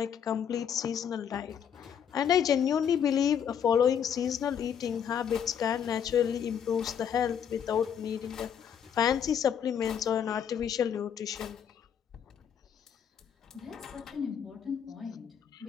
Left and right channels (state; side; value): quieter; right; 8.3 dB